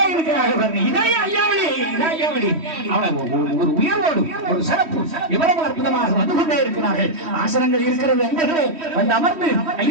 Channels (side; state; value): left; late; 3.1 ms